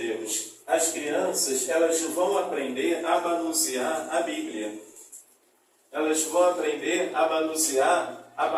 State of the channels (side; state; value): both; identical; correlation 1.00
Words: As crianças elas vão aprender a manusear a Bíblia. Elas vão aprender a manusear a